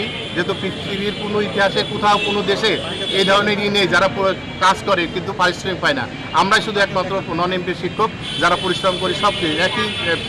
যেহেতু পৃথিবীর কোনো ইতিহাসে কোথাও কোনো দেশে এই ধরনেরই নেই যারা কাজ করে কিন্তু পারিশ্রমিক পায় না। আমরাই শুধু একমাত্র নন এমপি শিক্ষক যারা পরিশ্রম করি, সব একই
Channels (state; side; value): identical; both; correlation 1.00